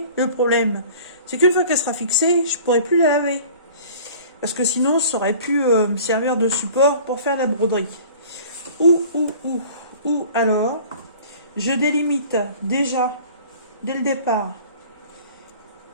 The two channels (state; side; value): inverted; both; correlation -0.46